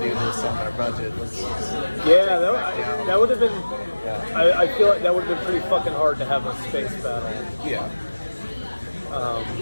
this on our budget. That would have been. Yeah. I feel like that would have been pretty fucking hard to have a space battle. Yeah.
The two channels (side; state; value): both; inverted; correlation -1.00